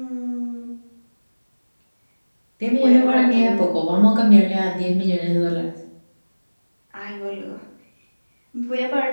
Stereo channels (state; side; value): inverted; both; correlation -1.00